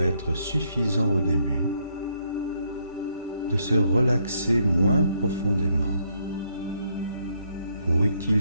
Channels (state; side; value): inverted; both; correlation -0.73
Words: suffisant au début de se relaxer moins profondément pour